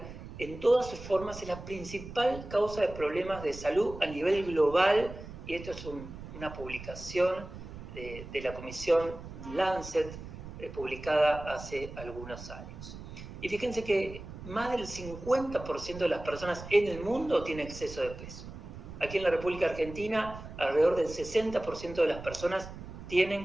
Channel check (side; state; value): right; noise; rumble, 12 dB below the sound